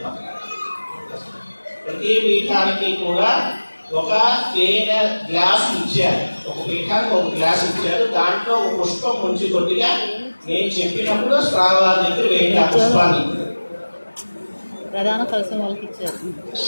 ఒక తేనె గ్లాస్ ఇచ్చారు. ఒక పీఠానికి ఒక గ్లాస్ ఇచ్చారు. దాంట్లో ఒక పుష్పం ముంచి కొద్దిగా నేను చెప్పినప్పుడు స్వామివారి దగ్గర వేయండి ఆ పుష్పాన్ని. ప్రధాన కలశం వాళ్ళకి ఇచ్చారు.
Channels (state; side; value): inverted; both; correlation -1.00